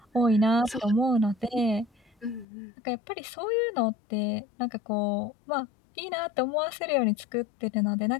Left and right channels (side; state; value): right; drops out; at 2.5 s